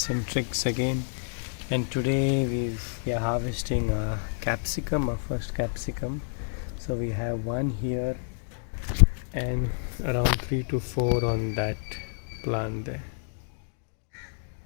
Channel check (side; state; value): right; silent; digital silence